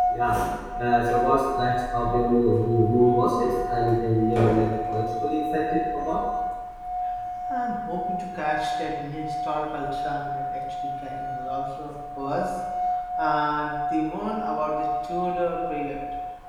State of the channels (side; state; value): both; identical; correlation 1.00